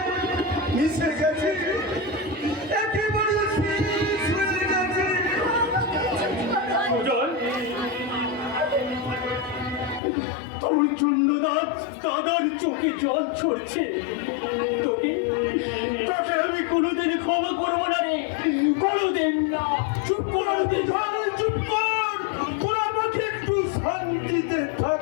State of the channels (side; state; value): right; drops out; at 10.0 s